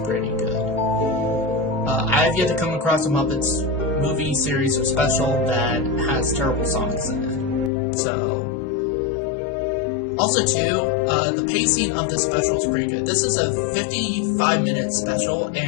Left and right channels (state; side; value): drops out; right; at 7.7 s